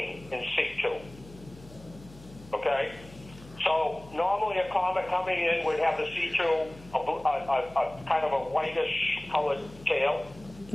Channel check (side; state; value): left; noise; hum, 20 dB below the sound